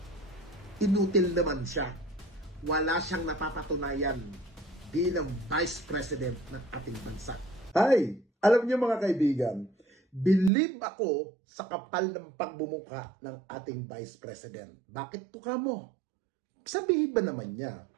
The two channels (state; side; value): drops out; left; at 10.5 s